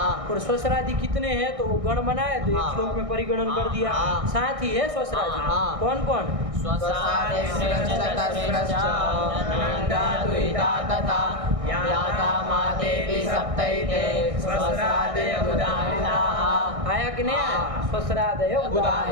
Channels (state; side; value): late; left; 1.6 ms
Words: और स्वस्त्रादि कितने हैं तो वो गण बनाए तो एक श्लोक में परिगणन कर दिया, साथ ही है स्वस्त्रादि कौन कौन? आया कि नहीं आया? स्वस्रादय